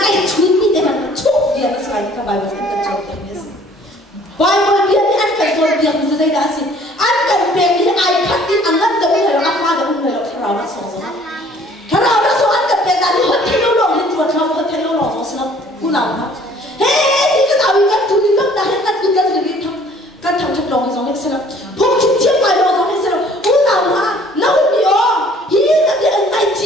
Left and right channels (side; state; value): both; normal; correlation 0.55